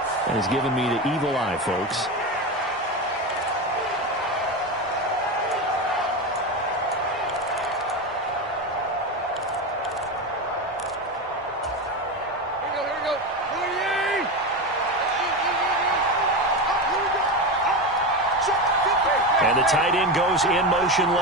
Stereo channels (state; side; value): normal; both; correlation 0.18